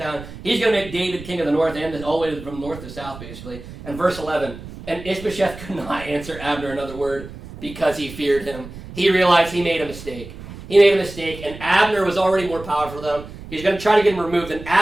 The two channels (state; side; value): noise; right; rumble, 14 dB below the sound